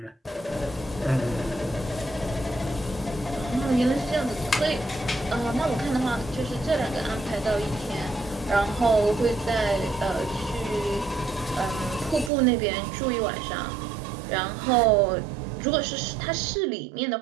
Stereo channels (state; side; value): drops out; left; at 12.3 s